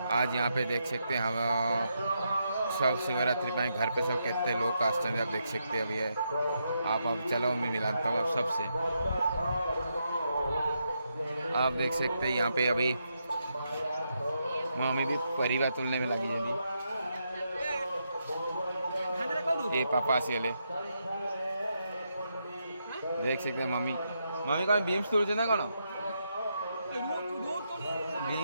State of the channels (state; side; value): inverted; both; correlation -0.82